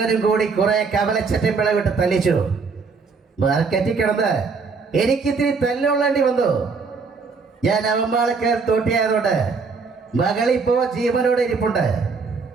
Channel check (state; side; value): quieter; left; 4.8 dB